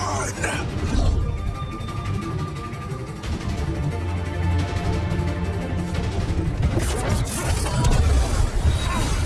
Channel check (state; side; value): identical; both; correlation 1.00